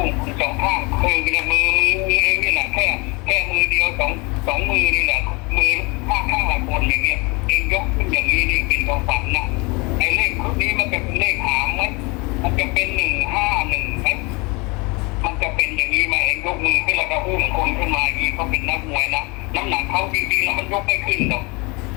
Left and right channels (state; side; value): quieter; right; 27.5 dB